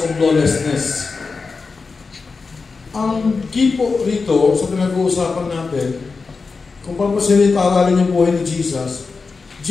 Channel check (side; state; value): right; quieter; 4.5 dB